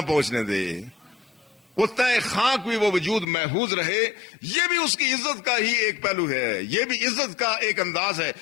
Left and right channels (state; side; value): drops out; right; at 3.2 s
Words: پہنچنے دے، وہ تہ خاک بھی وہ وجود محفوظ رہے۔ یہ بھی اس کی عزت کا ہی ایک پہلو ہے، یہ بھی عزت کا ایک انداز ہے،